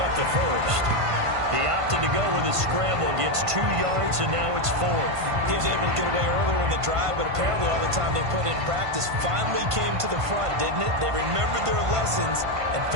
up the first. He opted to go with his scramble, gets 2 yards, and now it's 4th. He was able to get away earlier in the drive, but apparently all the time they put in practice finally came to the front, didn't it? They remembered their lessons and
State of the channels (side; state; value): left; late; 1.5 ms